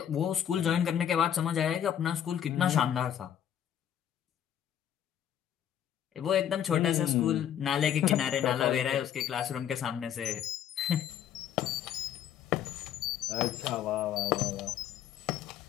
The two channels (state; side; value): quieter; right; 9.9 dB